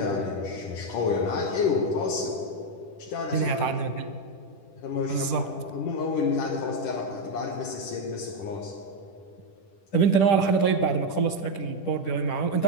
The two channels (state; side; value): late; right; 10 ms